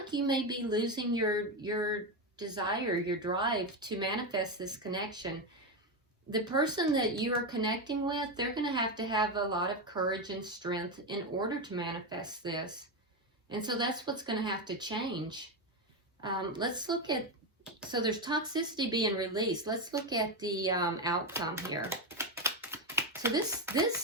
you may be losing your desire, your drive to manifest this connection. The person that you are connecting with, they're going to have a lot of courage and strength in order to manifest this. And so that's what's going to have to change. Let's look at, so there's toxicity being released. Let's look at the outcome here. So this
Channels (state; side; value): normal; both; correlation 0.11